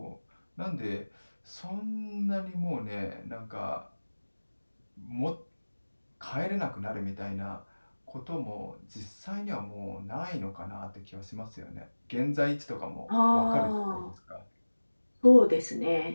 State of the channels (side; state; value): both; inverted; correlation -1.00